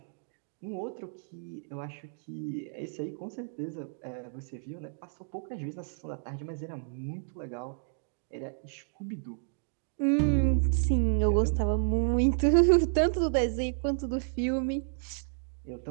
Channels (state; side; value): silent; left; digital silence